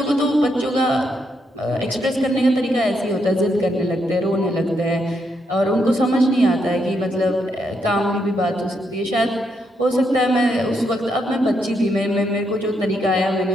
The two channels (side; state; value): both; normal; correlation 0.78